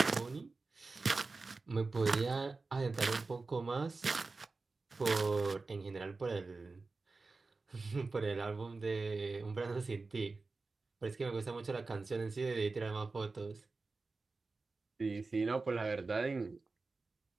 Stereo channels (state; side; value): quieter; left; 3.8 dB